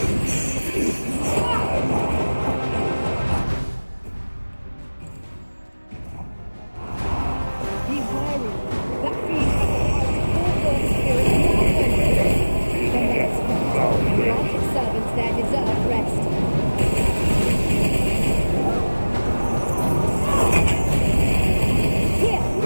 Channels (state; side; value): inverted; both; correlation -1.00